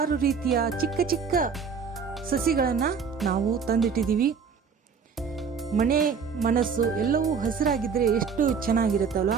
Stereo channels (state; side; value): quieter; left; 6.0 dB